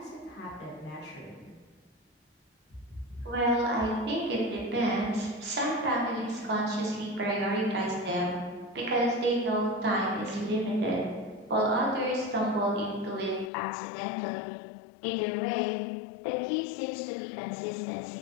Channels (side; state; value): right; drops out; at 13.5 s